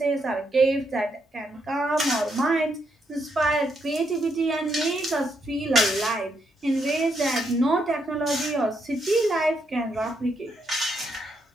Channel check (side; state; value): both; normal; correlation 0.78